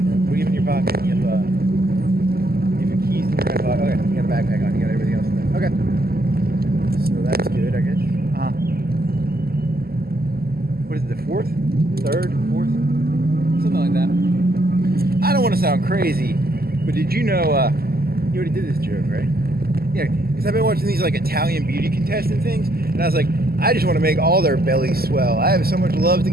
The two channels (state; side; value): late; left; 0.45 ms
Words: What do you have in your pocket? You have your keys in your back pocket. Okay, you got a backpack on. You got everything else in there. Okay. So that's good, I guess. What is it, the 4th? 3rd? 4th? Something like that. I don't want to sound crazy, but did you know, you already did this joke, right? Yeah, because I've been watching these like Italian beauty contestant things, and I was like, I just want to make all their bellies swell. I have so much love to